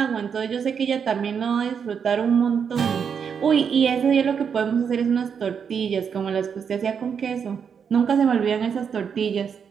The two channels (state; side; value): quieter; left; 7.0 dB